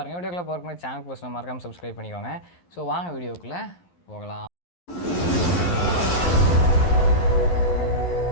வீடியோக்குள்ளே போகிறதுக்கு சேனல் போஸ்ட் மறக்காமல் சப்ஸ்கிரைப் பண்ணிக்கோங்க. ஸோ வாங்க வீடியோக்குள்ளே போகலாம்.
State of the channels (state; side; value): late; right; 11 ms